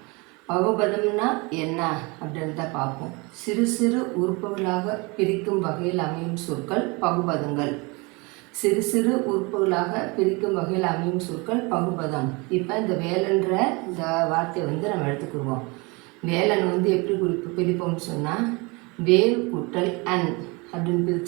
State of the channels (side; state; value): left; quieter; 27.4 dB